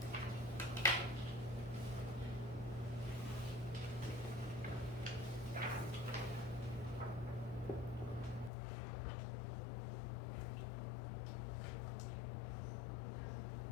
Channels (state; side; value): drops out; right; at 8.5 s